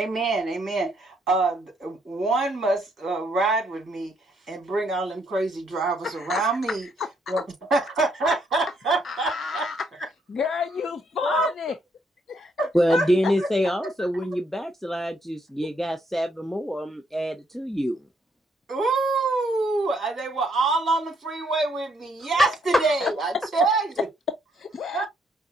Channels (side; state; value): both; normal; correlation 0.72